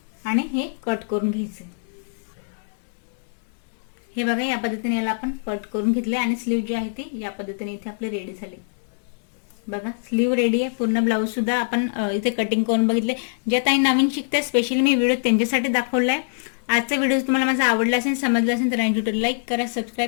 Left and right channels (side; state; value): right; silent; digital silence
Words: आणि हे कट करून घ्यायचे. हे बघा, या पद्धतीने याला आपण कट करून घेतले आणि स्लीव जी आहे ती या पद्धतीने इथे आपले रेडी झाले. बघा, स्लीव रेडी आहे. पूर्ण ब्लाऊज सुद्धा आपण इथे कटिंग करून बघितले. ज्या ताई नवीन शिकते स्पेशली मी व्हिडिओ त्यांच्यासाठी दाखवलाय. आजचा व्हिडिओ तुम्हाला माझा आवडला असेल, समजला असेल तर लाईक करा,